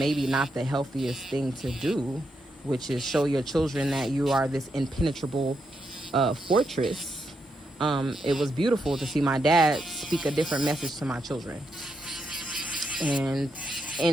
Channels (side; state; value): both; normal; correlation 0.82